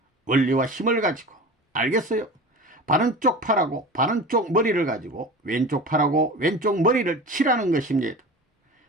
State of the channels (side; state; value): both; normal; correlation 0.34